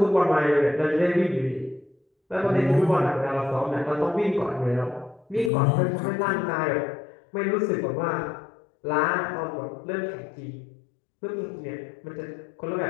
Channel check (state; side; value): drops out; right; at 5.5 s